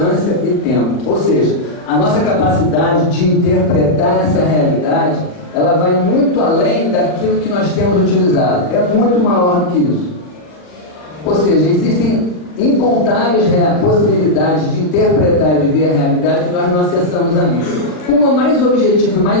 e tempo. Ou seja, a nossa capacidade de interpretar essa realidade, ela vai muito além daquilo que nós temos utilizado. É muito maior do que isso. Ou seja, existem incontáveis possibilidades de interpretar e de ver a realidade que nós não acessamos ainda. Uma mais objetiva e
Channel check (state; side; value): late; right; 39 ms